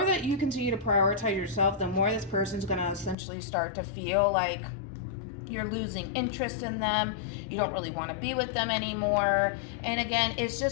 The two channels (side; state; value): right; drops out; at 3.2 s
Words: that you continue to prioritize yourself, the more this person's going to essentially start to feel like you're losing interest in them. You don't really want to be with them anymore. And again, it's